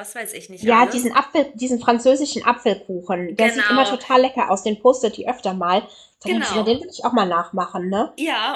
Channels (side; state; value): both; identical; correlation 1.00